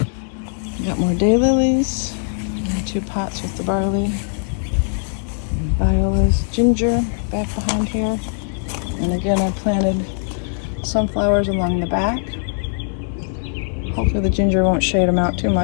We got more daylilies. 2 pots with the barley. And violas, ginger back behind here. And again, I planted sunflowers along the back. Hopefully the ginger won't shade them out too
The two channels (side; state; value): right; silent; digital silence